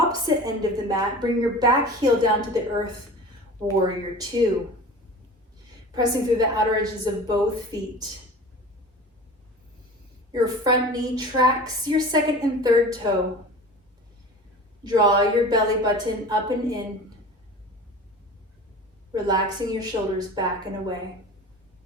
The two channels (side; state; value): both; normal; correlation 0.38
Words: end of the mat. Bring your back heel down to the earth, warrior two. Pressing through the outer edges of both feet. Your front knee tracks your second and third toe. Draw your belly button up and in. Relaxing your shoulders back and away.